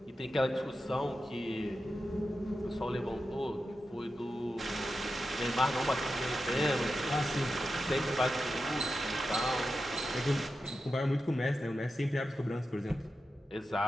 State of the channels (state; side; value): normal; both; correlation 0.90